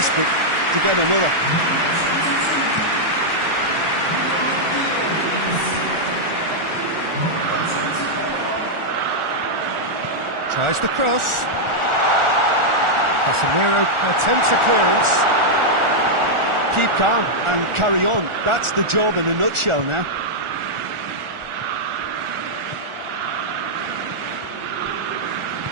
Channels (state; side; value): late; left; 1.4 ms